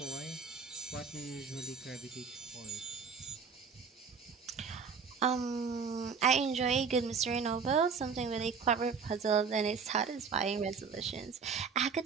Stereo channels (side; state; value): left; quieter; 5.8 dB